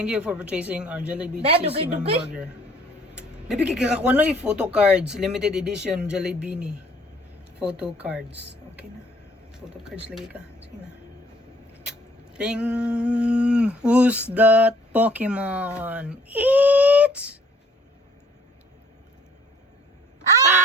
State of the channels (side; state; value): both; normal; correlation 0.59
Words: you for purchasing our Jollibee Dad, Cheesy dugay-dugay. Burger. Baby, kakakuha na yung photo cards. Limited edition Jollibee Bini. Photo cards. Okay na. Photo cards lagi ka. Sige na. Ting! Who's that Pokemon? It's...